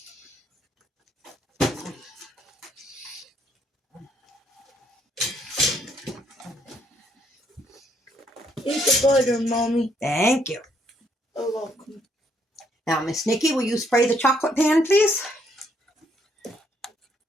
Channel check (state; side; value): normal; both; correlation 0.70